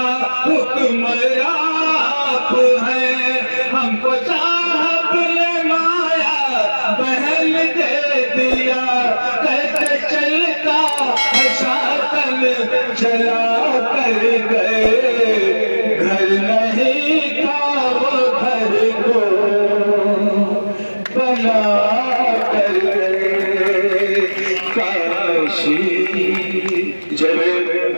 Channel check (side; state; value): both; inverted; correlation -1.00